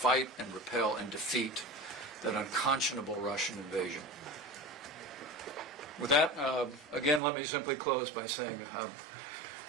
and repel and defeat that unconscionable Russian invasion. With that, again, let me simply close by saying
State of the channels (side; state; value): left; drops out; at 7.2 s